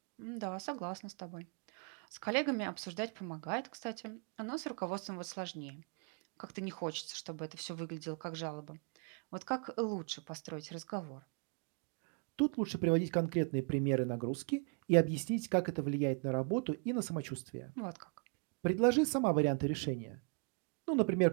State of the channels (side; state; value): left; quieter; 35.6 dB